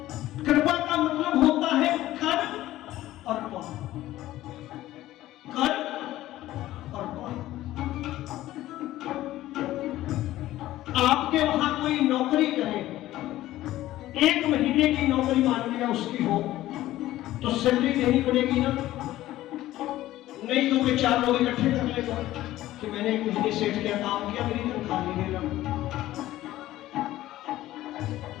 कृपा का मतलब होता है कर और पार, कर और पार। आपके वहां कोई नौकरी करे, 1 महीने की नौकरी मान लिया उसकी हो, तो सैलरी देनी पड़ेगी ना? नहीं तो मैं 4 लोग इकट्ठे कर लेगा कि मैंने एक महीने सेठ किया, काम किया, मेरी तनख्वाह नहीं देगा।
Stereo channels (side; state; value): right; quieter; 15.1 dB